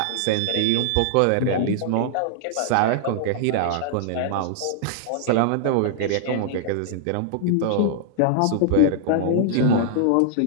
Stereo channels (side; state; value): both; different; correlation -0.01